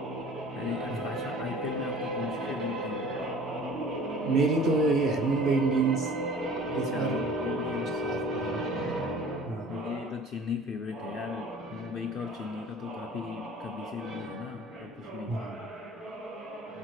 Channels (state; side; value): normal; both; correlation 0.46